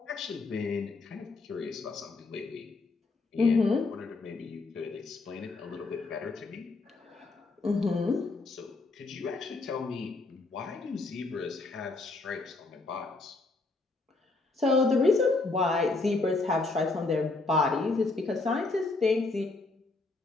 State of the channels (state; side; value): quieter; right; 3.5 dB